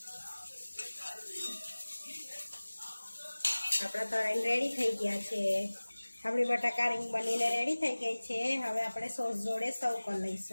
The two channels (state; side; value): inverted; both; correlation -1.00